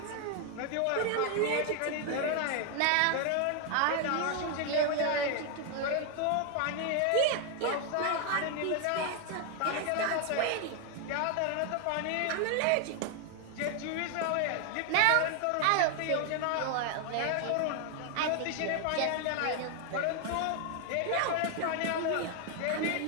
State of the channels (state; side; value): different; both; correlation 0.00